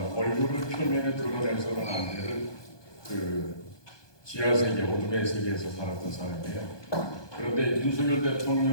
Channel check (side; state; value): right; late; 1.2 ms